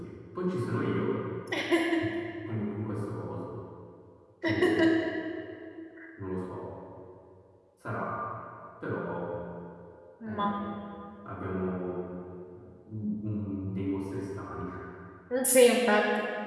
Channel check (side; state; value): both; identical; correlation 1.00